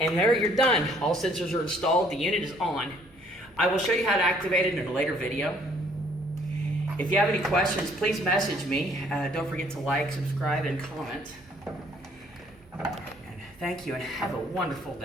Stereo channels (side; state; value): right; noise; hum, 28 dB below the sound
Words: there you're done. All sensors are installed, the unit is on. I will show you how to activate it in a later video. If you have any questions, please message me. Don't forget to like, subscribe, and comment. And thank you, and have a wonderful